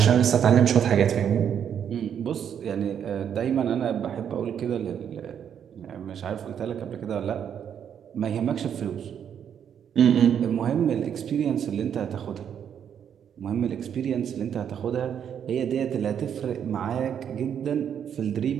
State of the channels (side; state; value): left; quieter; 8.6 dB